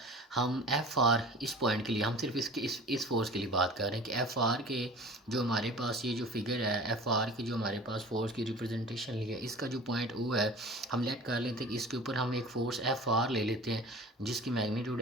हम एफ आर इस पॉइंट के लिए हम सिर्फ इसके इस फोर्स के लिए बात कर रहे हैं कि एफ आर के जो हमारे पास ये जो फिगर है एफ आर की जो हमारे पास फोर्स की रिप्रेजेंटेशन ली है, इसका जो पॉइंट ओ है हम लेट कर लेते हैं कि इसके ऊपर हम एक फोर्स एफ आर ले लेते हैं जिसकी मैग्नीट्यूड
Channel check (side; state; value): both; normal; correlation 0.41